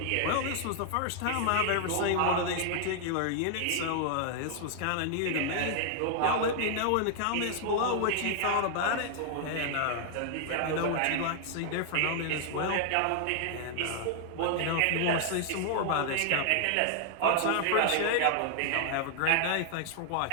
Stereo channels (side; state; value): both; different; correlation 0.00